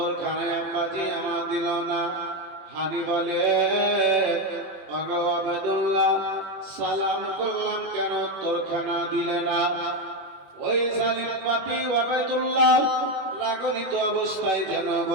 আব্বাজি আমার দিল না। হানি বলে ওগো আবেদুল্লাহ সালাম করলাম কেন উত্তরখানা দিলে না? ওই জালিম পাপী আবেদুল্লাহ রাগনিত অবস্থায় যেন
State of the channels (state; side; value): late; left; 21 ms